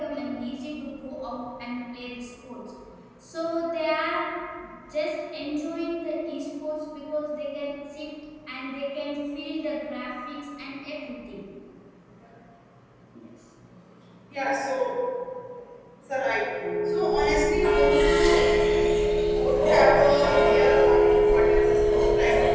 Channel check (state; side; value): identical; both; correlation 1.00